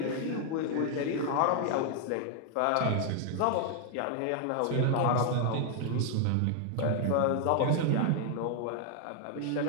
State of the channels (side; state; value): both; different; correlation 0.00